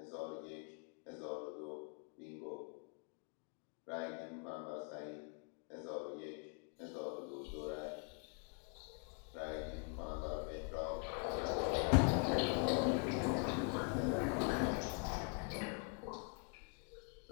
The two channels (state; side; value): quieter; right; 36.2 dB